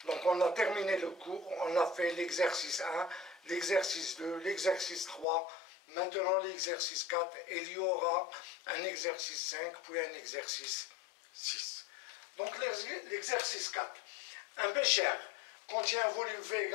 Donc, on a terminé le cours, on a fait l'exercice 1, l'exercice 2, l'exercice 3, maintenant l'exercice 4, et il y aura un exercice 5, puis un exercice 6. Donc l'exercice 4. Un bécher contient un volume V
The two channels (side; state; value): right; drops out; at 5.2 s